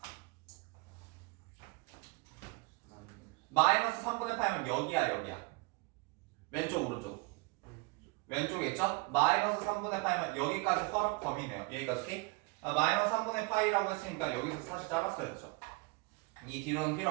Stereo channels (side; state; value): left; quieter; 26.0 dB